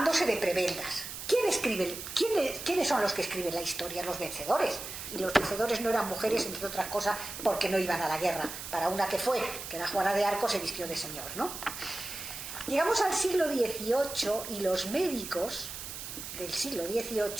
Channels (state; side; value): noise; right; hiss, 9 dB below the sound